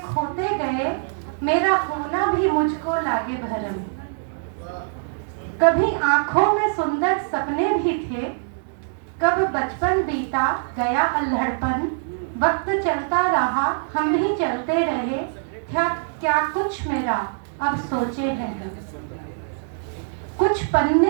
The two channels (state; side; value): silent; left; digital silence